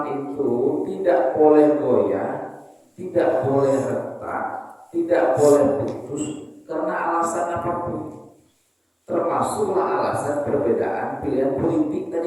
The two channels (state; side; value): identical; both; correlation 1.00